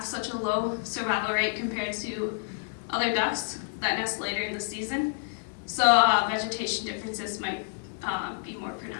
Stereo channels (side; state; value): right; silent; digital silence